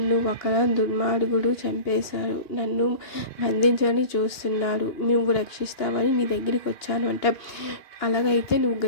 ఒక దుర్మార్గుడు చంపేశాడు, నన్ను బంధించని చూస్తున్నాడు, నువ్వు రక్షిస్తావని నీ దగ్గరికి వచ్చాను అంట. అలాగైతే నువ్వు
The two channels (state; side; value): late; right; 2.9 ms